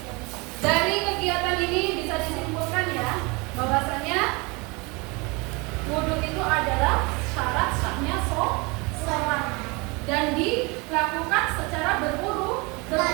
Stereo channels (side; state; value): left; quieter; 27.5 dB